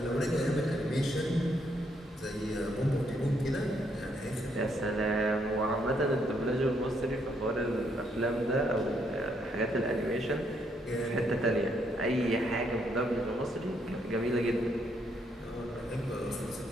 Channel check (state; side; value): normal; both; correlation 0.73